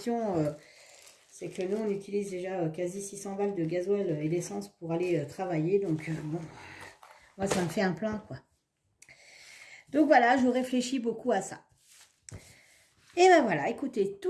c'est que nous on utilise déjà quasi 600 balles de gasoil et d'essence pour aller travailler, donc bon, moi ça me fait un plein quoi. Donc voilà, je réfléchis beaucoup à ça. Et ben voilà, écoutez,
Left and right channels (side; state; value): both; identical; correlation 1.00